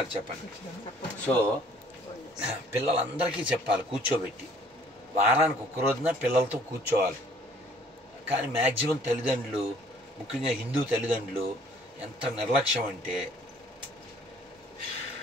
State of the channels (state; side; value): normal; both; correlation 0.57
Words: చెప్పండి. సో పిల్లలందరికీ చెప్పాలి కూర్చోబెట్టి, వారానికి ఒక్క రోజున పిల్లలతో కూర్చోవాలి. కానీ మ్యాక్సిమం తల్లిదండ్రులు, ముఖ్యంగా హిందూ తల్లిదండ్రులు ఎంత నిర్లక్ష్యం అంటే